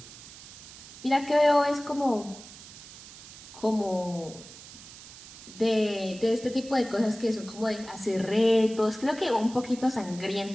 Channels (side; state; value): right; noise; hiss, 16 dB below the sound